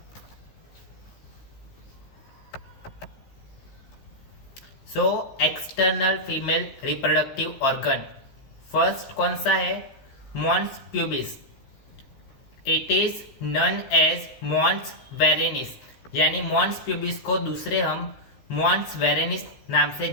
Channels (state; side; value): late; right; 15 ms